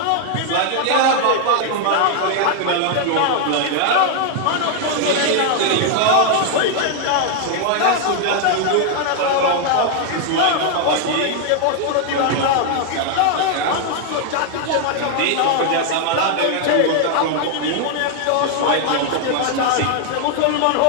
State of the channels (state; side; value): different; both; correlation 0.00